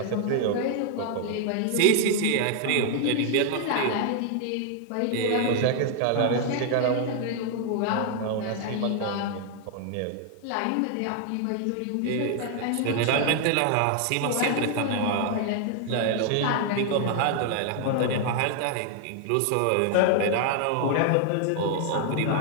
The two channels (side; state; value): both; different; correlation 0.00